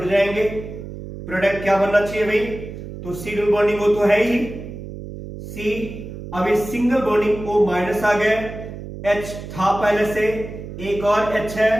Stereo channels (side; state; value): right; noise; hum, 11 dB below the sound